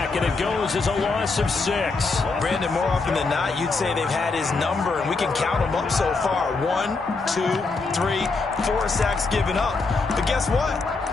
and it goes as a loss of 6. Brandon, more often than not, you'd say they've had his number, and we can count them up so far. 1, 2, 3, 4 sacks given up. But guess what?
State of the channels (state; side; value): quieter; right; 4.0 dB